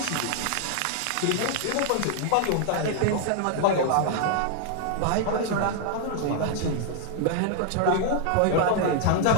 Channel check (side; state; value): both; different; correlation 0.00